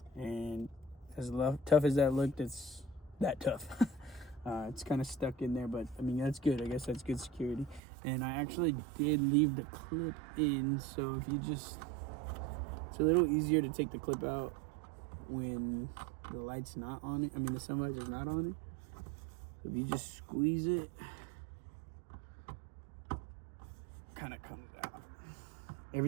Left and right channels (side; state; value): left; drops out; at 7.8 s